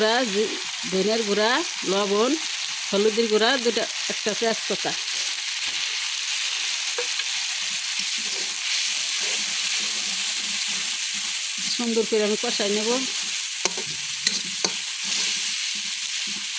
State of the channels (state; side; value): identical; both; correlation 1.00